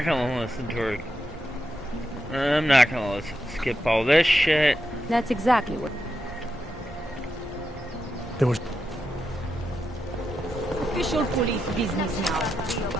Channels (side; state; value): both; normal; correlation 0.86